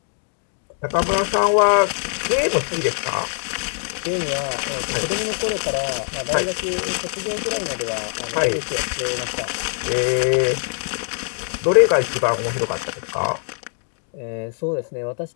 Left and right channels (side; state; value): right; silent; digital silence